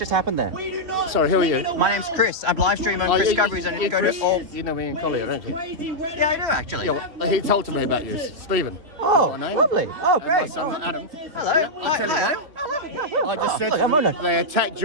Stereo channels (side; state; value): left; late; 3.3 ms